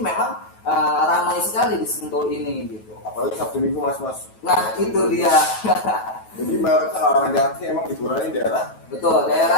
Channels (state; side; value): late; right; 9.3 ms